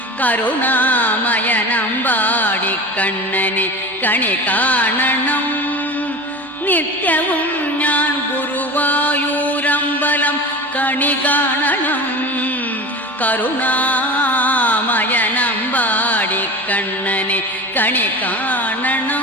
കരുണാമയനമ്പാടിക്കണ്ണനെ കണി കാണണം. നിത്യവും ഞാൻ ഗുരുവായൂരമ്പലം കണി കാണണം കരുണാമയനമ്പാടിക്കണ്ണനെ കണി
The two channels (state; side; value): normal; both; correlation 0.32